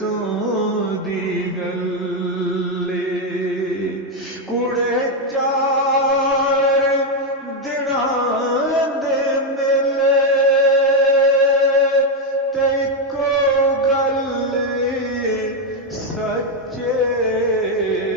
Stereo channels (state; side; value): normal; both; correlation 0.04